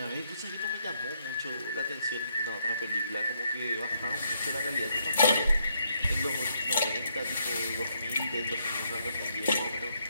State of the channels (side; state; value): both; inverted; correlation -0.75